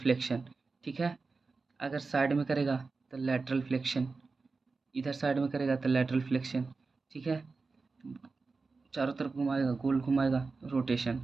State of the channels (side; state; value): left; quieter; 4.1 dB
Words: ठीक है। अगर साइड में करेगा तो लैटरल फ्लेक्शन, इधर साइड में करेगा तो लैटरल फ्लेक्शन, ठीक है। चारों तरफ घुमाएगा, गोल घुमाएगा, रोटेशन,